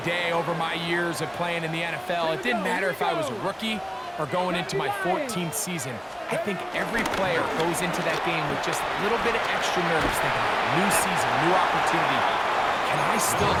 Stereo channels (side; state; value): both; identical; correlation 1.00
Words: day over my years of playing in the NFL, it didn't matter if I was a rookie or going into my 14th season. I think every player goes into that game with just a little bit of extra nerves, thinking, new season, new opportunity. Can I still